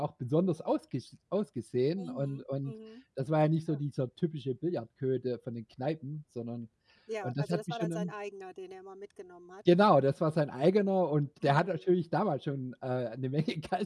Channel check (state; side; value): identical; both; correlation 1.00